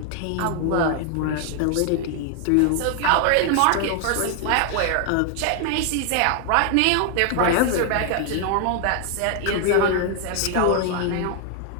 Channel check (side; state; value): both; different; correlation 0.00